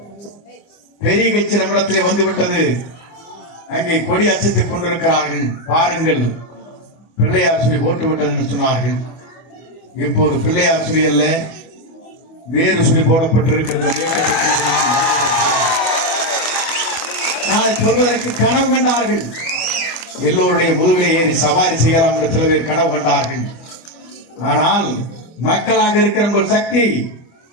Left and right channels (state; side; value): late; right; 25 ms